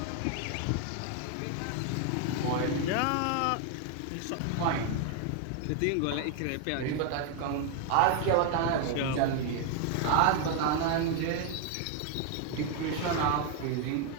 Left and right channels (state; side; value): different; both; correlation 0.01